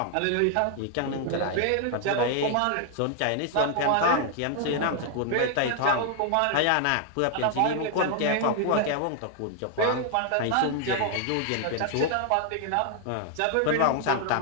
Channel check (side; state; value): both; different; correlation 0.00